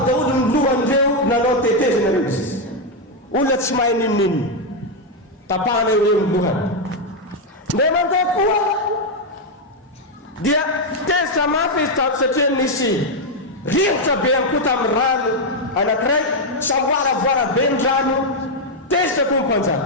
daholo ny lohan'ireo nanao tetezana reo izy. Olona tsy mahay ninonino tapahana eo eo ny lohany. Ndray mandeha koa dia tezitra mafy izy tato satria nisy rivotra be ihany koa tamin'ny rano anankiray samboaravoara be ny rano tezitra koa ny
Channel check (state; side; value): normal; both; correlation 0.02